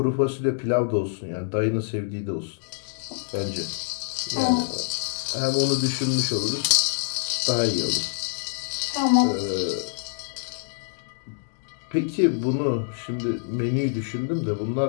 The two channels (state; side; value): silent; right; digital silence